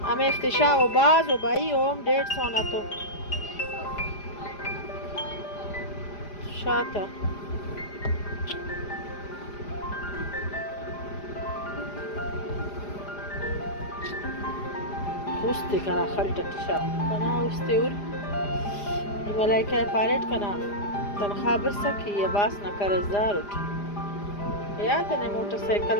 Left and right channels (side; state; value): right; late; 4.9 ms